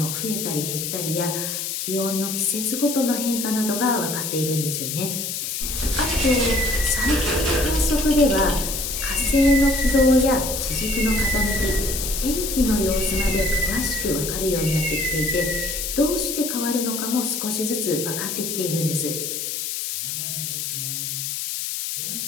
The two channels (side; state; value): left; noise; hiss, 3 dB below the sound